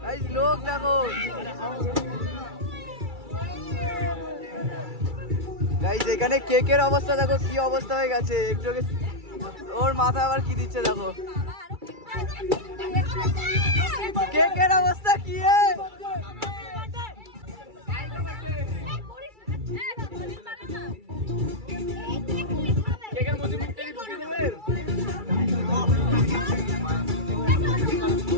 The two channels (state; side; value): late; left; 2.3 ms